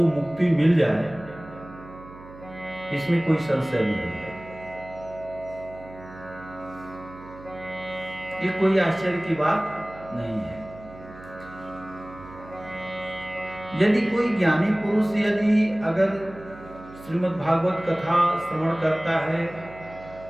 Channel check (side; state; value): right; noise; hum, 18 dB below the sound